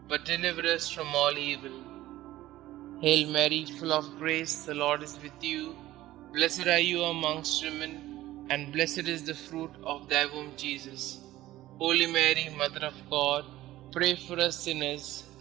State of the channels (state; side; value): quieter; left; 15.6 dB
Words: but deliver us from all evil. Hail Mary, full of grace, the Lord is with you. Blessed are you amongst women, and blessed is the fruit of thy womb, Jesus. Holy Mary, Mother of God, pray for us sinners,